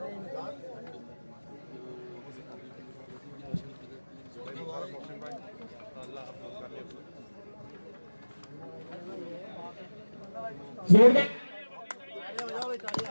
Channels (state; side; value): inverted; both; correlation -1.00